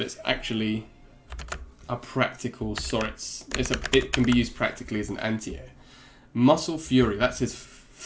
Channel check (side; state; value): both; identical; correlation 1.00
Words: it's actually a practical SORIZ. It can be used practically as an anti-air. Muscle Fury. That's his